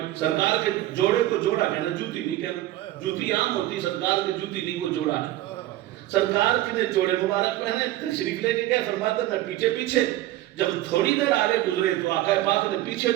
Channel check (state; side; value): quieter; left; 15.3 dB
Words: سرکار کے جوڑے کو جوڑا کہنا, جوتی نہیں کہنا. جوتی عام ہوتی, سرکار کے جوتی نہیں, وہ جوڑا ہے. سرکار کے نے جوڑے مبارک پہنے, تشریف لے کے گئے. فرماتا میں پیچھے پیچھے. جب تھوڑی دیر آگے گزرے تو آقا پاک نے پیچھے